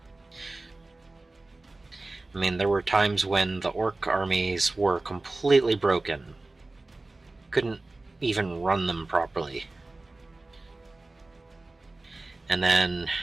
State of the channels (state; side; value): quieter; left; 3.1 dB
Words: I mean, there were times when the Orc armies were completely broken. Couldn't even run them properly. And then,